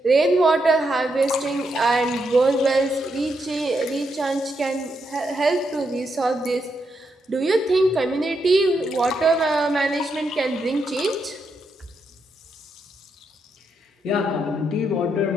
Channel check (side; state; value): both; normal; correlation 0.81